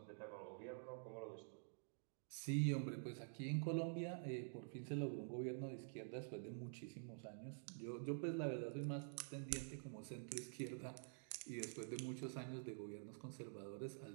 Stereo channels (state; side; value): silent; left; digital silence